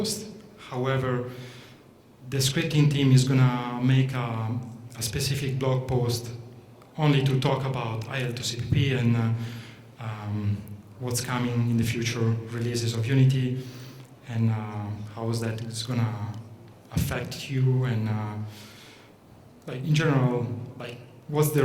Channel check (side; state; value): both; identical; correlation 1.00